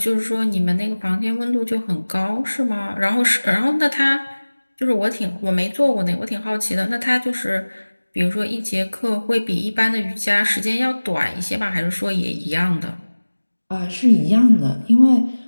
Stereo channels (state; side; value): inverted; both; correlation -1.00